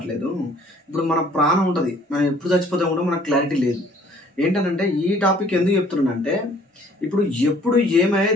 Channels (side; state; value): both; normal; correlation 0.57